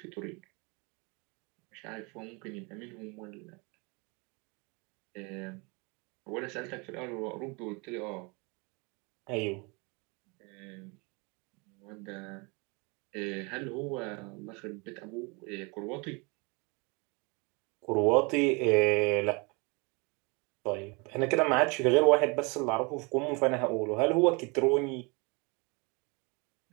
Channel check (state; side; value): quieter; left; 29.9 dB